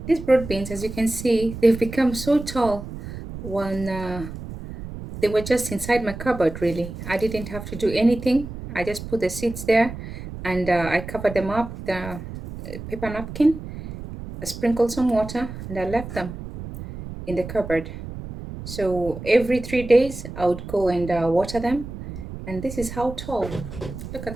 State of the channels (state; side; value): noise; right; rumble, 10 dB below the sound